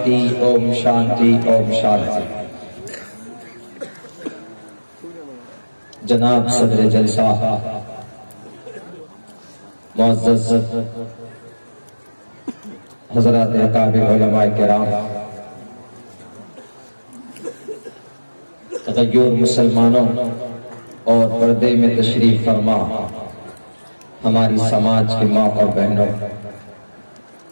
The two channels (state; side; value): inverted; both; correlation -1.00